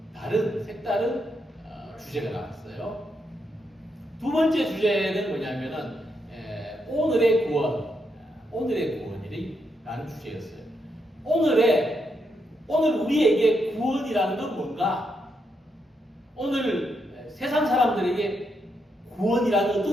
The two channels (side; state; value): both; normal; correlation 0.81